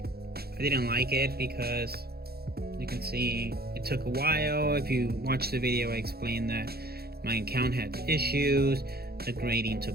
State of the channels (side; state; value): left; late; 0.46 ms